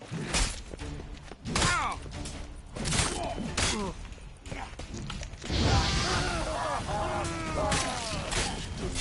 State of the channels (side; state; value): both; identical; correlation 1.00